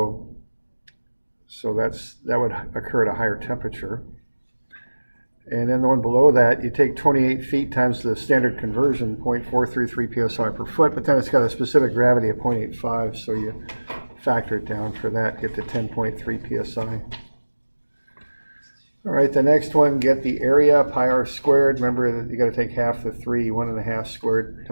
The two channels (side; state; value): both; inverted; correlation -1.00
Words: that would occur at a higher temperature. And then the one below that, you take 28 feet times the standard conversion, 0.433 psi per foot, but then it's got a specific gravity of 0.85, so you factor it down for that, get to 10.3 psi. All right, the next one, get the area, pi r squared. Remember that you got to take half the 3, 1.5 squared